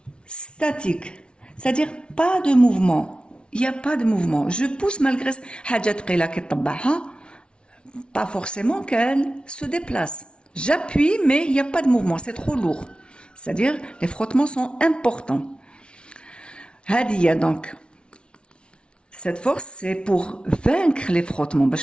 statique. C'est-à-dire pas de mouvement. Il n'y a pas de mouvement. Je pousse malgré حاجة ثقيلة كي طبعها pas forcément qu'elle se déplace. J'appuie mais il n'y a pas de mouvement, c'est trop lourd. C'est-à-dire les frottements sont importants. هذه donc cette force c'est pour vaincre les frottements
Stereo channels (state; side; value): late; right; 0.057 ms